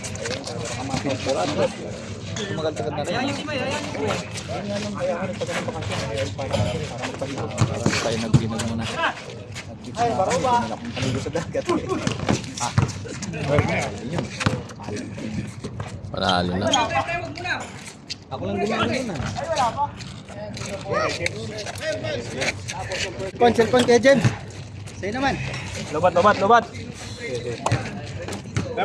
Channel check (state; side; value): identical; both; correlation 1.00